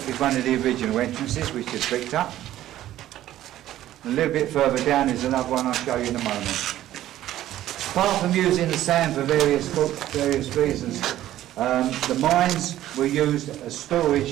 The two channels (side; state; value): left; quieter; 13.4 dB